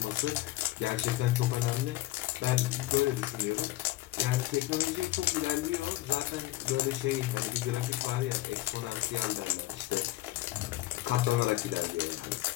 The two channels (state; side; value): quieter; right; 17.4 dB